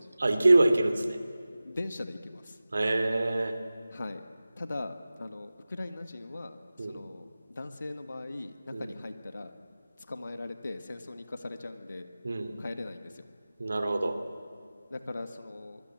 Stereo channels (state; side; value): inverted; both; correlation -0.97